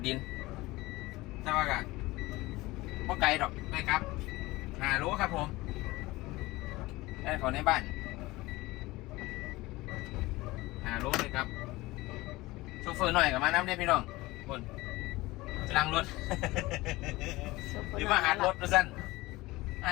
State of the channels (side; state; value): right; quieter; 20.1 dB